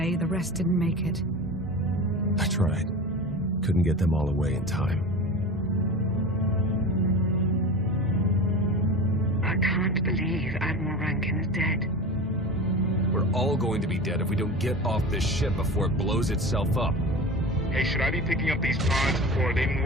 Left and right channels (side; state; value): both; normal; correlation 0.32